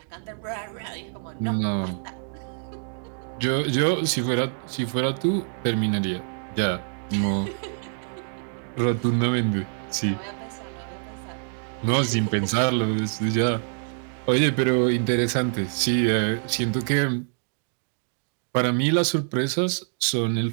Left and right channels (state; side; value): silent; left; 61 dB below the other